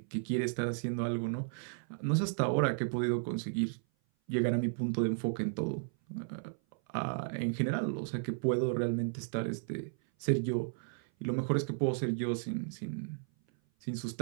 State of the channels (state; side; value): silent; left; 55 dB below the other